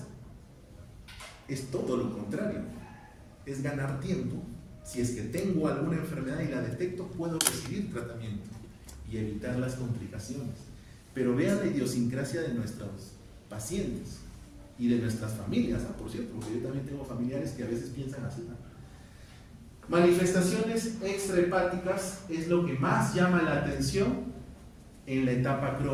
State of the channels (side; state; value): both; identical; correlation 1.00